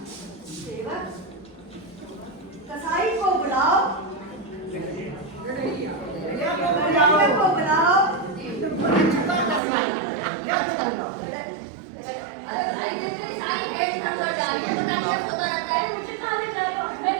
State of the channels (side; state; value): left; drops out; at 9.6 s